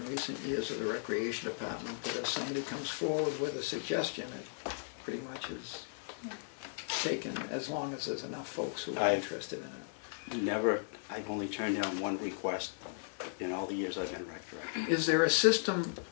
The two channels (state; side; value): silent; right; digital silence